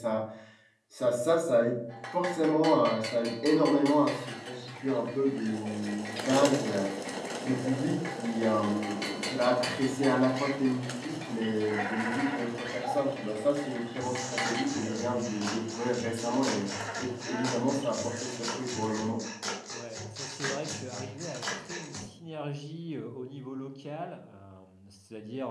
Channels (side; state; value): both; identical; correlation 1.00